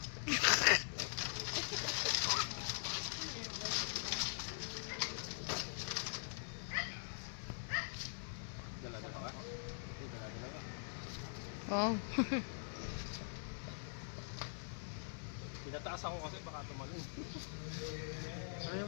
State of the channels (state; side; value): silent; right; digital silence